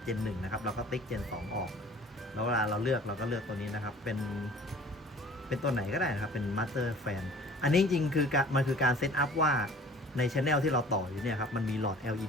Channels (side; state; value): both; normal; correlation 0.47